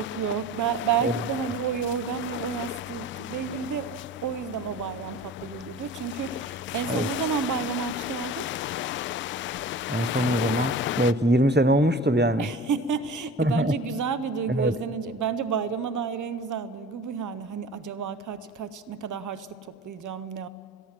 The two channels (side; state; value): both; normal; correlation 0.39